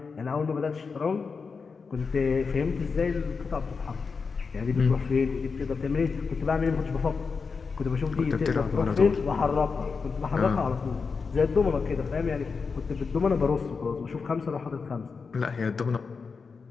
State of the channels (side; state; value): right; quieter; 5.0 dB